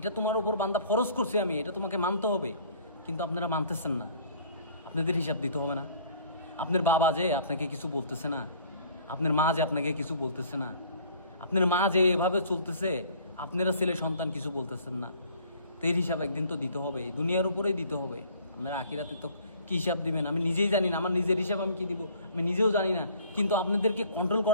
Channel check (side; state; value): both; inverted; correlation -0.54